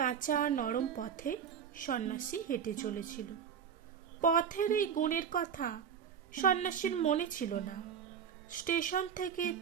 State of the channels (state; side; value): quieter; left; 7.8 dB